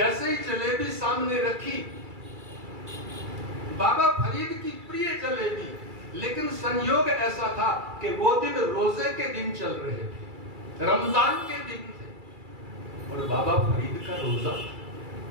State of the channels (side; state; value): left; late; 2.3 ms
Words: ही जलेबी सामने रखी, बाबा फरीद की प्रिय जलेबी, लेकिन संयोग ऐसा था कि वो दिन रोजे के दिन चल रहे थे, रमजान के दिन थे और बाबा फरीद का रोजा था।